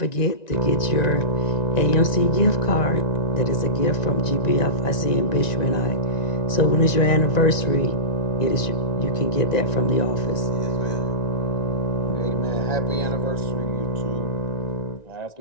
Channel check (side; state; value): right; late; 1.9 ms